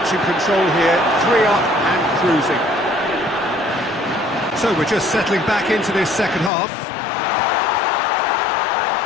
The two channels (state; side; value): drops out; right; at 6.5 s